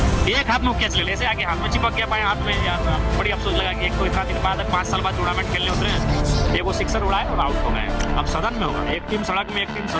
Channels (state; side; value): identical; both; correlation 1.00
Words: एक हाथ में कैच ले ऐसे आगे हाथ में चिपक गया, पाए हाथ में यार, बड़ी अफसोस लगा कि एक तो इतना दिन बाद 5 साल बाद टूर्नामेंट खेलने उतरे, एक वो सिक्सर उड़ाए और आउट हो गए। अब सदन में होगा, एक टीम सड़क में एक टीम